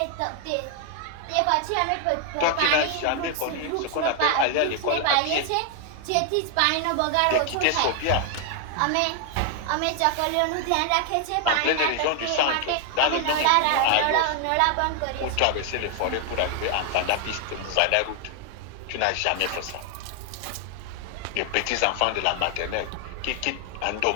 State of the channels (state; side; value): different; both; correlation 0.00